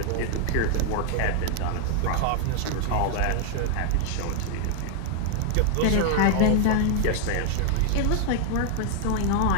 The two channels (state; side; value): different; both; correlation 0.00